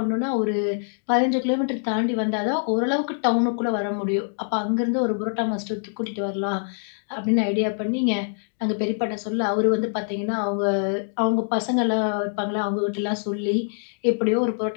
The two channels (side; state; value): right; silent; digital silence